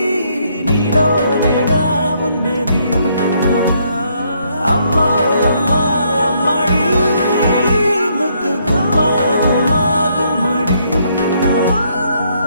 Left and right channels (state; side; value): inverted; both; correlation -0.71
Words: నీలోనేగా ఉన్నది అమ్మా అమ్మా అమ్మడి ముద్దు గుమ్మా గుమ్మా గుమ్మడి